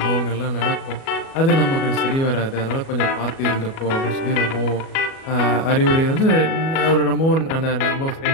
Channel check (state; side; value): late; right; 37 ms